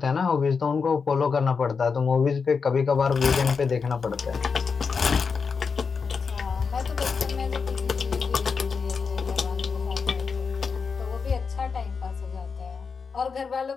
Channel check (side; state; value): right; quieter; 5.4 dB